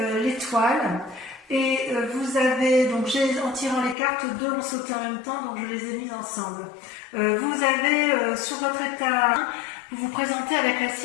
l'étoile. Et vous avez, donc en tirant les cartes, deux ont sauté en même temps, donc je les ai mises ensemble. Vous avez sur votre état, vous vous présentez avec la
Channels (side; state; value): right; drops out; at 4.0 s